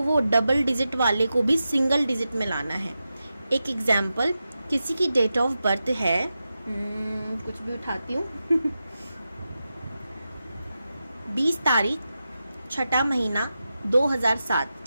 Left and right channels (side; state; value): both; inverted; correlation -0.91